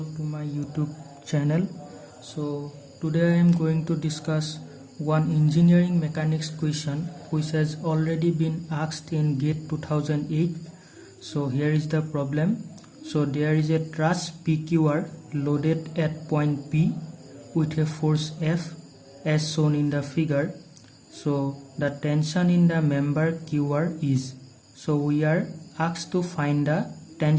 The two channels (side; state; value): both; identical; correlation 1.00